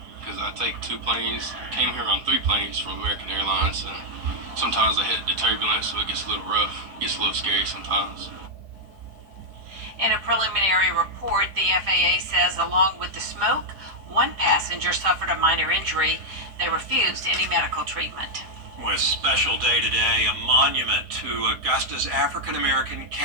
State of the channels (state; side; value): late; left; 4.8 ms